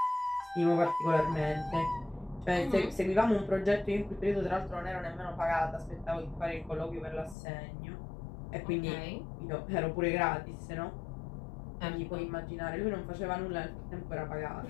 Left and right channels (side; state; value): right; drops out; at 7.4 s